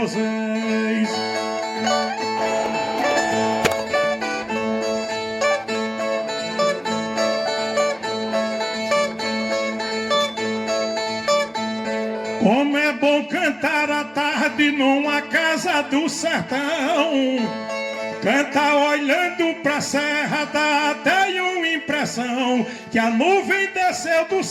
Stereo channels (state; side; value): identical; both; correlation 1.00